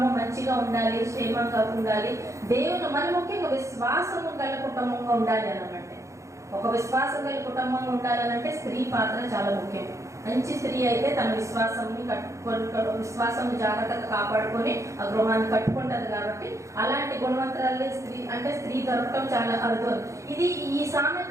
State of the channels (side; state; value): left; late; 0.15 ms